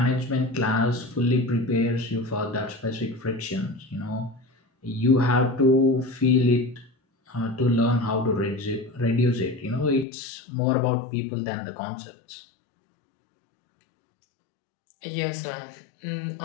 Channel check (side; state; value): right; drops out; at 10.1 s